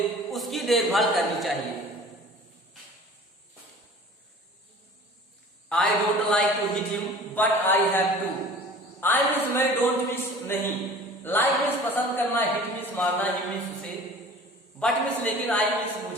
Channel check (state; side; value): normal; both; correlation 0.44